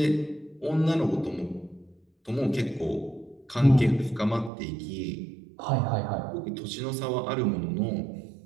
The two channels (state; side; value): drops out; left; at 4.5 s